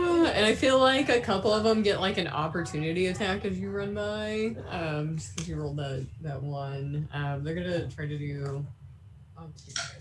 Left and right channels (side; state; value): both; identical; correlation 1.00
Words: I feel like a couple of them get like an opportunity attack as you run by. Just because you rolled that one. They're gonna try to do. I'll give you